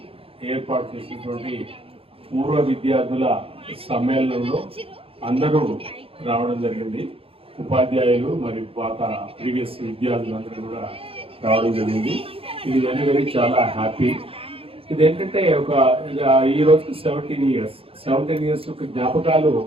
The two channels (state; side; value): late; left; 0.27 ms